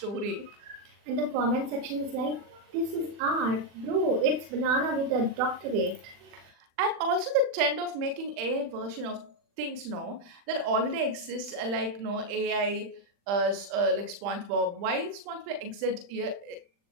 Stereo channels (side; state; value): left; late; 40 ms